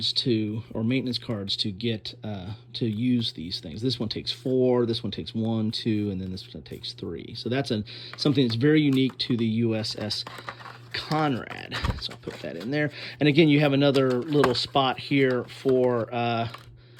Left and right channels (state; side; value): identical; both; correlation 1.00